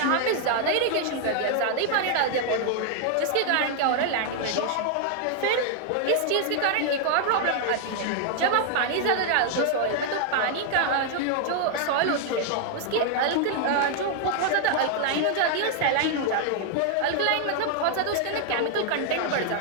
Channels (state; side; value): different; both; correlation 0.00